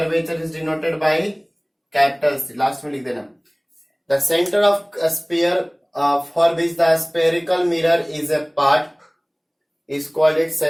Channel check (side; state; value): both; identical; correlation 1.00